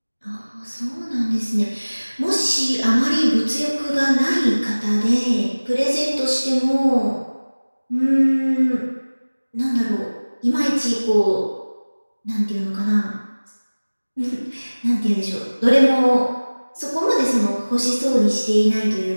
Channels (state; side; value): inverted; both; correlation -1.00